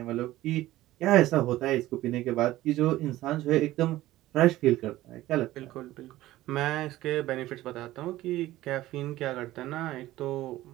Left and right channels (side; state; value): left; quieter; 16.0 dB